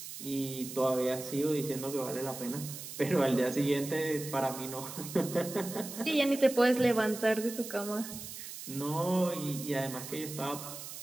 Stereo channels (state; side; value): noise; right; hiss, 10 dB below the sound